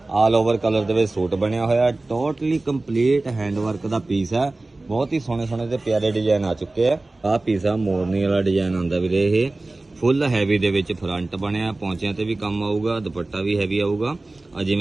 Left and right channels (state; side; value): quieter; left; 3.0 dB